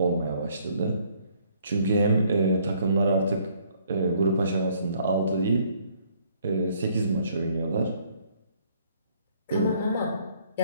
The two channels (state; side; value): inverted; both; correlation -0.64